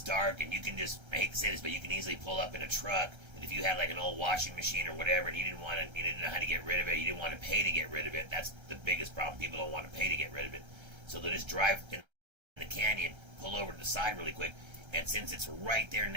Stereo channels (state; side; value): late; left; 1.3 ms